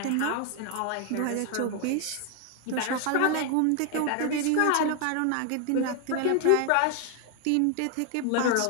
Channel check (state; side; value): different; both; correlation 0.00